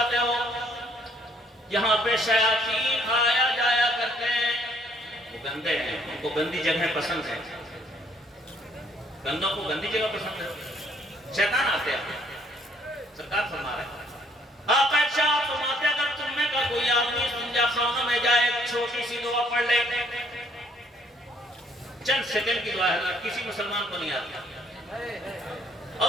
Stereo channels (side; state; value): both; normal; correlation 0.65